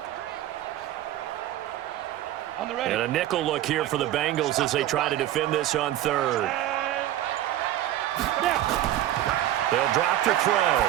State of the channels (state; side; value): quieter; left; 13.2 dB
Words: And a nickel look here for the Bengals as they try to defend this on third. They'll drop to throw.